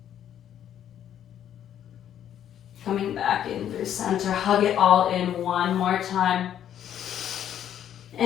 Coming back in through center. Hug it all in one more time.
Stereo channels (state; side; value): quieter; right; 10.2 dB